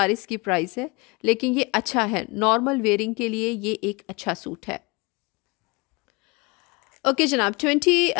इसकी प्राइस है। लेकिन ये अच्छा है, नॉर्मल वेयरिंग के लिए ये एक अच्छा सूट है। ओके जनाब,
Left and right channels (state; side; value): quieter; right; 27.2 dB